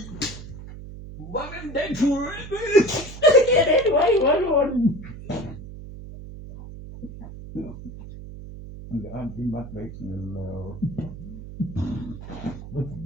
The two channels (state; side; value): noise; right; hum, 13 dB below the sound